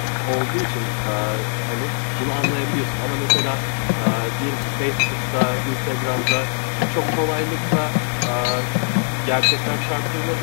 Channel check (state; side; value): silent; right; 65 dB below the other